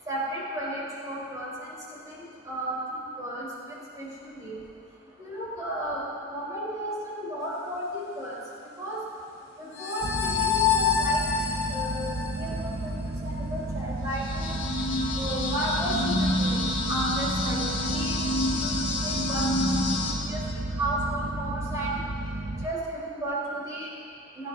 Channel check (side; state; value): both; normal; correlation 0.36